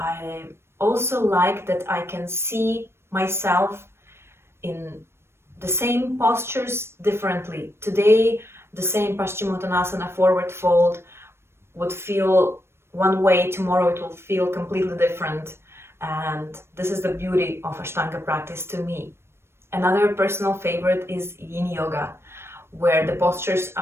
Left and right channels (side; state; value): left; late; 0.12 ms